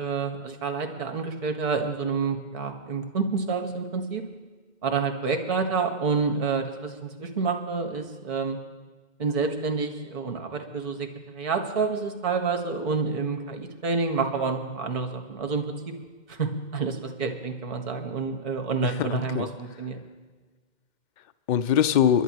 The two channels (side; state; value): right; late; 2.1 ms